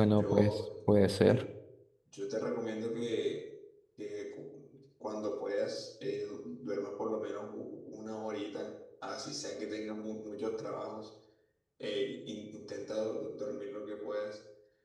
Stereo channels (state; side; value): identical; both; correlation 1.00